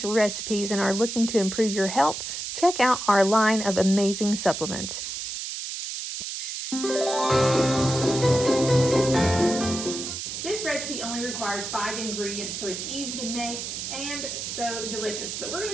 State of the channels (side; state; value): right; noise; hiss, 5 dB below the sound